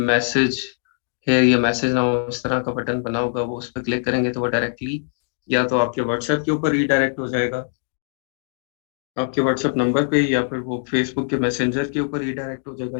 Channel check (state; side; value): silent; right; 64 dB below the other